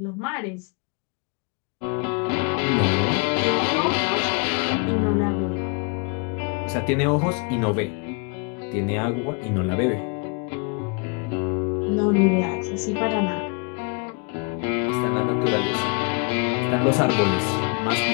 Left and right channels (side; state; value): right; quieter; 34.5 dB